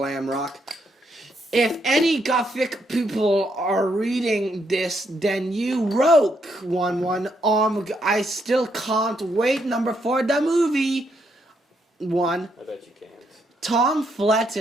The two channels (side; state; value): both; normal; correlation 0.76